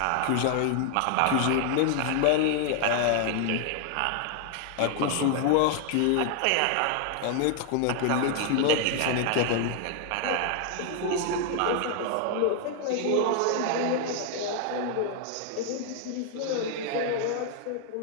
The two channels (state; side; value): different; both; correlation 0.00